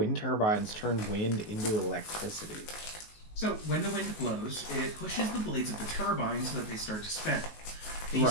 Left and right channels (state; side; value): late; right; 19 ms